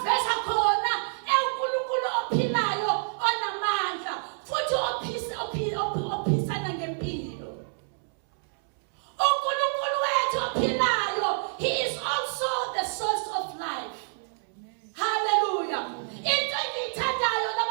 khona uNkulunkulu ophilayo onamandla futhi ophisana ngempilo. uNkulunkulu wethu ophilayo, he is also the source of life. Hallelujah. Into engiyithandayo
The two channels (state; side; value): silent; left; 60 dB below the other